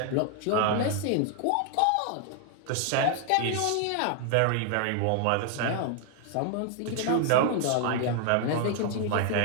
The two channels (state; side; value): different; both; correlation 0.00